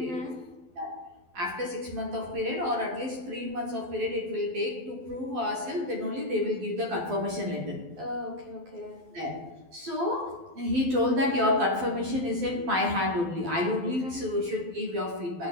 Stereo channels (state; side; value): late; left; 12 ms